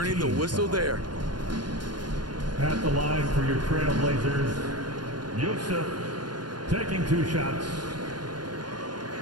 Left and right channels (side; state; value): left; late; 0.70 ms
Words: the whistle there. At the line for your Trailblazers, Yusuf taking 2 shots.